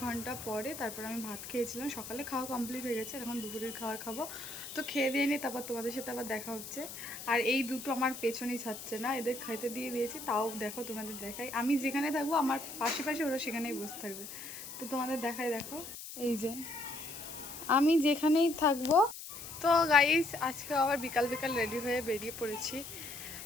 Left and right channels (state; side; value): noise; left; hiss, 11 dB below the sound